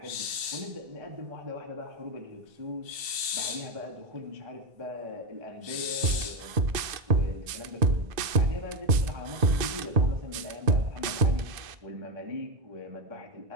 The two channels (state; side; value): late; left; 2.5 ms